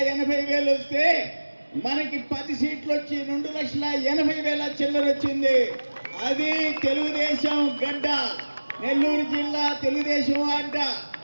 వస్తే మనకి 10 సీట్లు వచ్చి 2,80,000 చిల్లర వచ్చింది. అది తెలుగుదేశం గడ్డ, నెల్లూరు జిల్లా తెలుగుదేశం అడ్డ.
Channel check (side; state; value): both; inverted; correlation -1.00